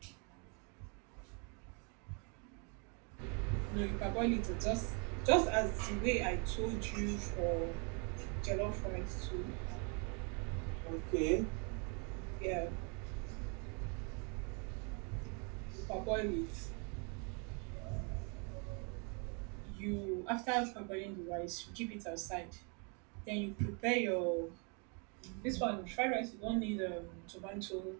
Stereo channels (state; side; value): quieter; left; 35.9 dB